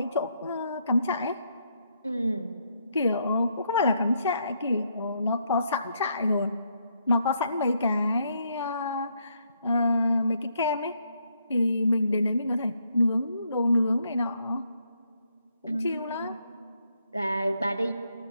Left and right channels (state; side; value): inverted; both; correlation -0.75